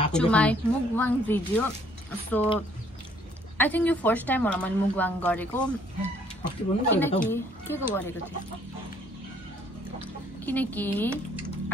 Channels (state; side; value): normal; both; correlation 0.63